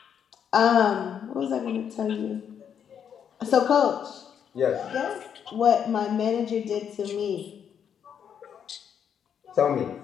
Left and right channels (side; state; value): right; quieter; 8.2 dB